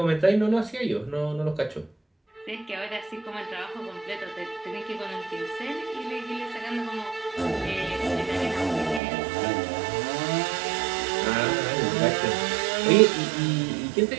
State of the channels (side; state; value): left; drops out; at 9.0 s